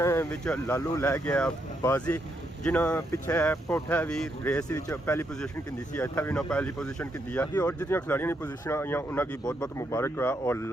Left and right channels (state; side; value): normal; both; correlation 0.78